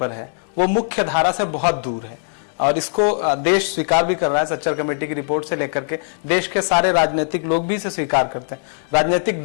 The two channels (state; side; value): silent; right; 66 dB below the other